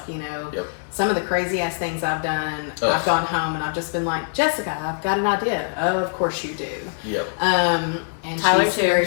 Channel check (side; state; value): right; silent; 64 dB below the other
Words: you know, Yep. some of the crazy ass things I've done, Ugh. I've gone home and I've just been like, Jessica, I've got an idea. Oh, of course you do. Yep. And Tyler she's too. very